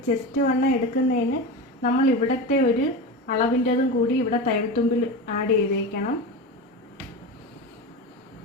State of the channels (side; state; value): both; normal; correlation 0.23